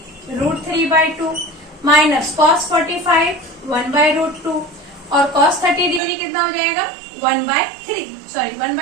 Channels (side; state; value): left; drops out; at 6.0 s